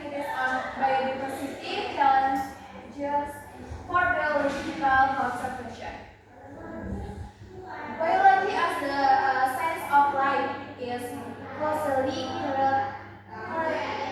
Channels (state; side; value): identical; both; correlation 1.00